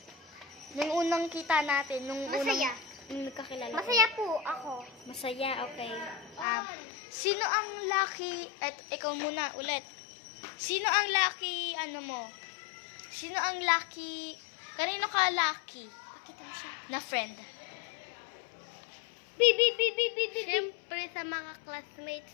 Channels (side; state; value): right; drops out; at 6.5 s